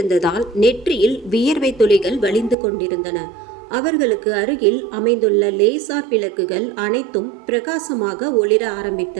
நெற்றியில் வியர்வை துளிகள் வழிந்து கொண்டிருந்தன. அவர்களுக்கு அருகில் அமைந்துள்ள லேசார் விளக்குகள் அனைத்தும் பிரகாசமாக ஒளிர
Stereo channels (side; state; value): left; drops out; at 2.6 s